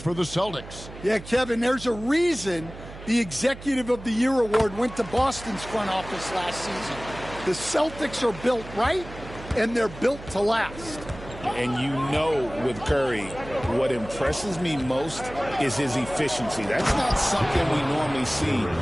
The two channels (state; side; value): noise; right; hum, 14 dB below the sound